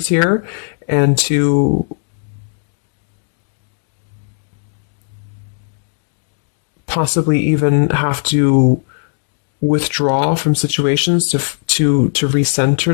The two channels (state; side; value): silent; right; digital silence